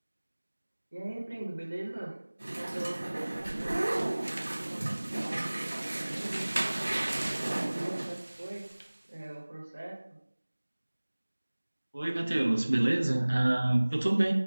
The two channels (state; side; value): inverted; both; correlation -1.00